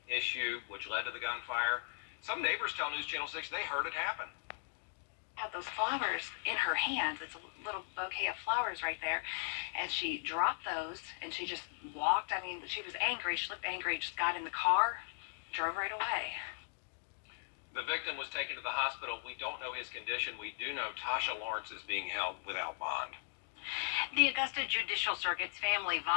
issue which led to the gunfire. Some neighbors tell News Channel 6 they heard it happen. Had those flowers in her hands. It's a little bouquet of flowers right there. And she dropped those and she just walked. I mean, she was angry. She looked angry. Just got in the car, drove right away. The victim was taken to the hospital. We don't know his condition. We do know Tasha Lawrence is being held without bond. The Augusta Judicial Circuit's Family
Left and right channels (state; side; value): silent; right; digital silence